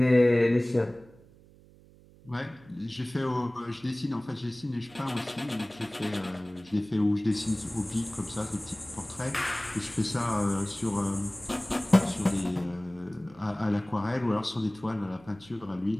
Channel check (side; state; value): right; noise; hum, 25 dB below the sound